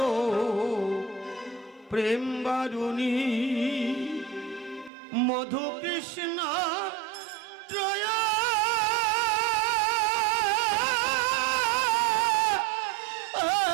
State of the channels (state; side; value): drops out; left; at 4.9 s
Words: প্রেম বারুণী মধু কৃষ্ণ ত্রয়া